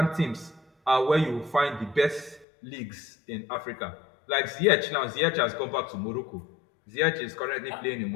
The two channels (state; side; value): drops out; right; at 2.5 s